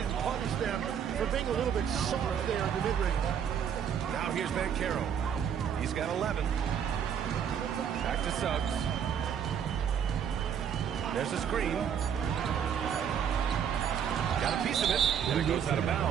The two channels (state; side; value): quieter; left; 8.3 dB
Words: punish them for being a little bit soft there in the mid-range. Now here's Banchero. He's got 11. Back to Suggs. There's a screen. Got a piece of it, and it goes out of